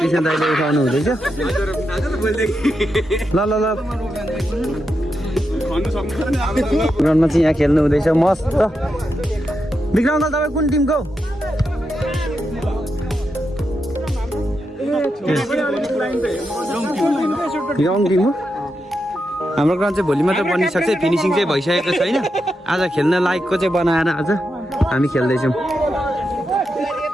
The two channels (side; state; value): both; normal; correlation 0.86